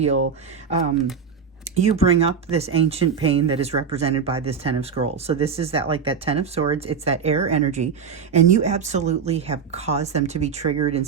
you bring up this ancient pain that is represented by this Ten of Scrolls. So this is that Ten of Swords. It's that air energy. And you absolutely have caused them to be triggered in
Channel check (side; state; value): left; quieter; 6.4 dB